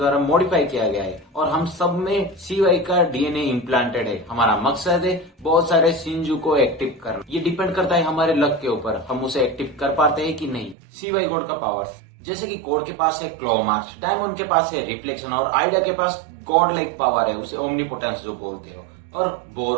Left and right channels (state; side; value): drops out; left; at 10.8 s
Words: मॉडिफाई किया गया है, और हम सब में सीवाई का डीएनए इम्प्लांटेड है। हमारा मकसद है बहुत सारे शिनजू को एक्टिव करना, ये डिपेंड करता है हमारे लक के ऊपर, हम उसे एक्टिव कर पाते हैं कि नहीं। सीवाई गॉड का पावर्स जैसे कि कोड के पास है क्लो मार्च, डायमंड के पास है रिफ्लेक्शन, और आइडिया के पास गॉड लाइक पावर है, उसे ओमनीपोटेंस जो बोलते हो। और